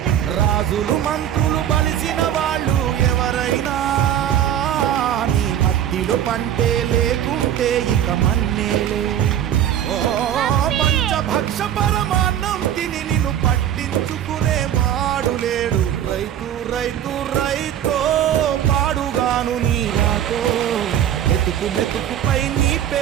రాజులు మంత్రులు బలిసిన వాళ్ళు ఎవరైనా నీ మట్టిలో పంటే లేకుంటే ఇక మన్నేలే. ఓ పంచభక్ష పరమాన్నం తిని నిన్ను పట్టించుకునే వాడు లేడు. రైతు రైతు రైతో పాడుగాను నీ రాతో. మెతుకు మెతుకుపై నీ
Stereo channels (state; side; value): quieter; left; 10.5 dB